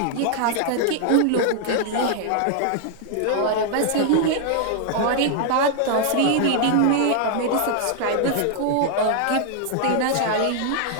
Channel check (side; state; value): both; different; correlation 0.00